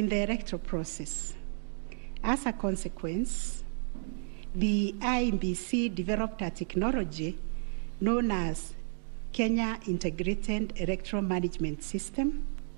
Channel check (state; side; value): silent; left; digital silence